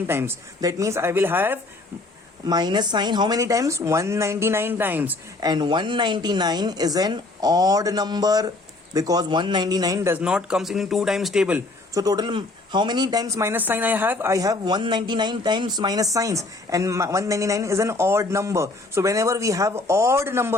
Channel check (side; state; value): right; quieter; 3.1 dB